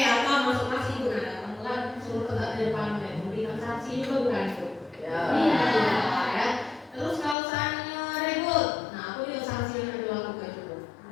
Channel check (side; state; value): right; drops out; at 7.4 s